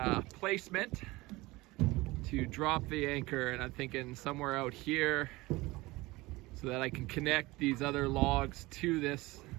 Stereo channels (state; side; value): quieter; left; 21.0 dB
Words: placement to drop the anchor, and I'm thinking somewhere out here so that I can connect these other logs to this